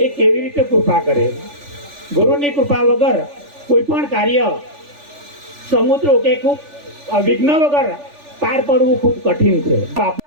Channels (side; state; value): left; late; 3.4 ms